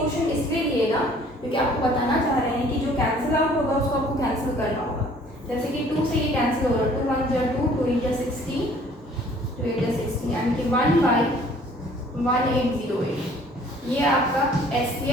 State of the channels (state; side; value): normal; both; correlation 0.55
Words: इसलिए लिएगा क्योंकि आपको बताना चाह रहे हैं कि जो कैंसिल आउट होगा उसको आपको कैंसिल करना होगा। जैसे कि 2 से ये कैंसिल हो रहा है, 2 1 जा 2, 2 8 जा 16, 2 8 जा 16, यानी कि 1/1808, ये आपका